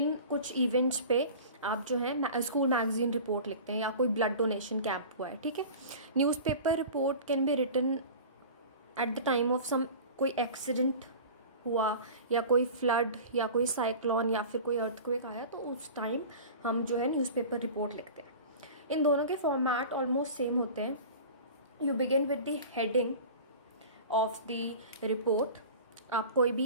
कुछ इवेंट्स पे आप जो है स्कूल मैगज़ीन रिपोर्ट लिखते हैं, या कोई ब्लड डोनेशन कैंप हुआ है, ठीक है। Newspaper report can be written at the time of some कोई एक्सीडेंट हुआ या कोई फ्लड या कोई साइक्लोन या फिर कोई अर्थक्वेक आया, तो उस टाइम हम जो है न्यूज़पेपर रिपोर्ट लिखते हैं। इन दोनों के फॉर्मेट ऑलमोस्ट सेम होते हैं। You begin with the heading of the report. आप कोई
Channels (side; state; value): both; inverted; correlation -0.37